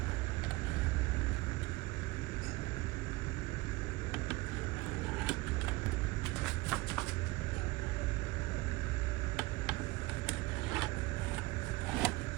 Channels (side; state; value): left; quieter; 21.3 dB